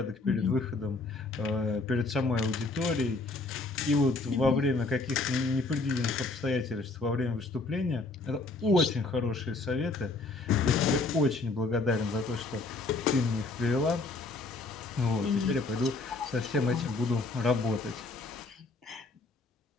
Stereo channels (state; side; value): quieter; right; 3.5 dB